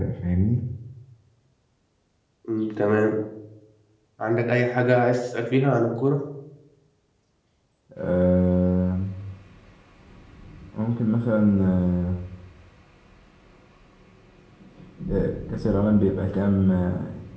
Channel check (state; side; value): identical; both; correlation 1.00